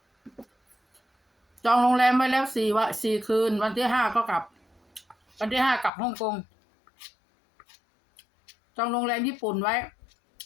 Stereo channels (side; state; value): right; drops out; at 5.9 s